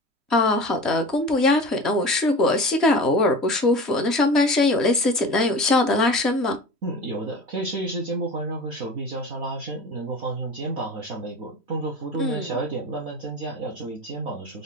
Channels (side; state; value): left; late; 3.1 ms